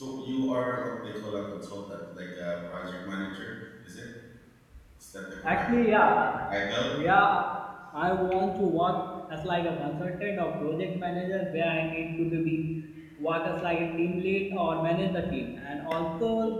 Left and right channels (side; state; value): both; identical; correlation 1.00